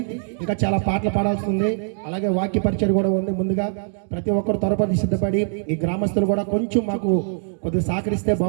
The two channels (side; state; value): left; silent; digital silence